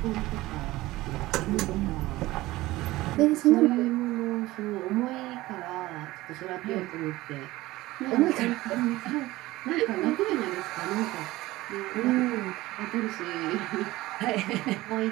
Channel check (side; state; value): left; quieter; 18.2 dB